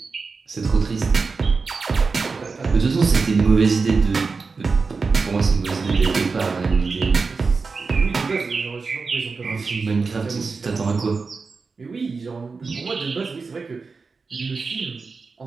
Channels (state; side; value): quieter; left; 4.5 dB